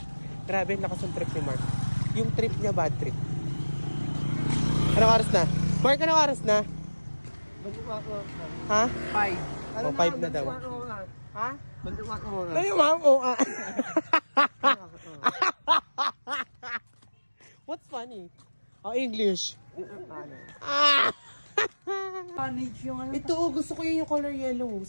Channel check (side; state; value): both; inverted; correlation -1.00